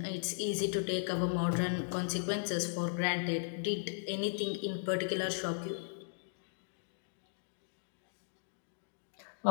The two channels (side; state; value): right; silent; digital silence